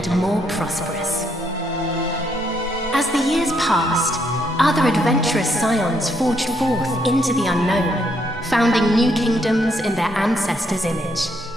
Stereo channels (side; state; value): both; normal; correlation 0.73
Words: more prosperous. As the years passed, other adventurous scions forged forth into the unknown, founding new kingdoms in their ancestors' image.